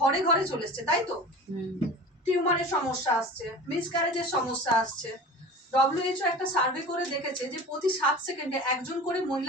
ঘরে চলে এসছে, তাই তো। টিউমারের সমস্যা আসছে, মিসক্যারেজের সমস্যা আসছে। WHO একটা সার্ভে করে দেখেছে যে প্রতি 7 সেকেন্ডে একজন করে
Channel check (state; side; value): normal; both; correlation 0.36